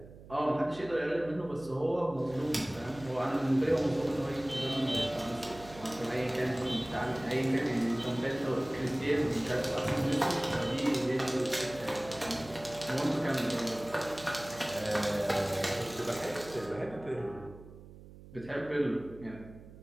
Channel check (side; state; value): right; noise; hum, 18 dB below the sound